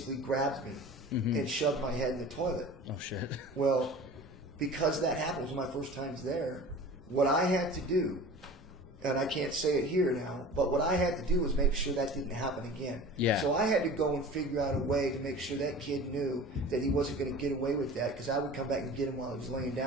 grabbed me and shoved my head in the toilet. Oh, shit. Well, because that happened, it was my first times there, what I had to do, and I can't say it here now, but what I had to do was make sure that didn't happen again. Yeah. So I had to go and figure out a way to make sure that kid knew that he wasn't going to get away with that, because I would come back and get him while he was laying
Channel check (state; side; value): normal; both; correlation 0.39